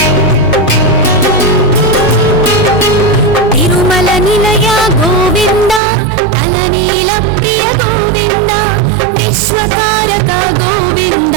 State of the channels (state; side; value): drops out; left; at 5.8 s